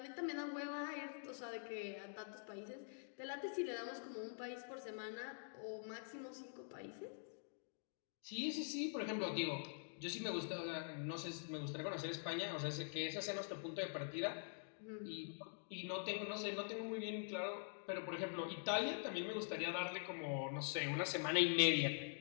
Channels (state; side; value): silent; right; digital silence